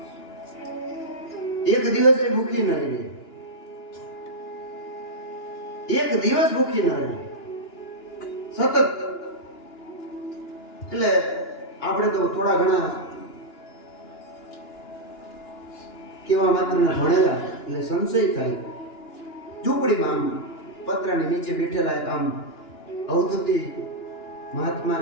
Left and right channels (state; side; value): late; right; 2.9 ms